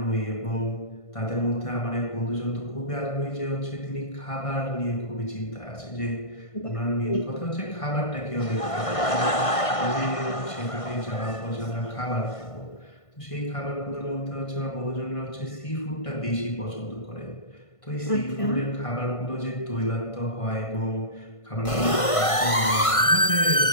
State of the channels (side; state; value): right; late; 1.5 ms